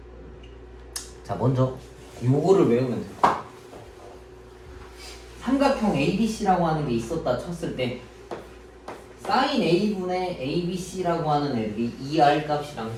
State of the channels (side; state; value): both; identical; correlation 1.00